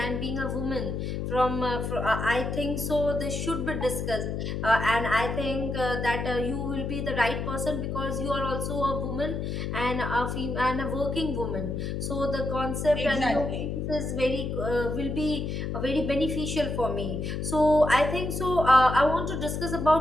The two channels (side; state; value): left; noise; hum, 3 dB below the sound